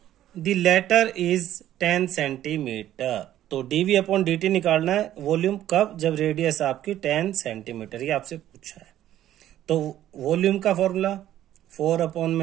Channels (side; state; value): left; quieter; 12.5 dB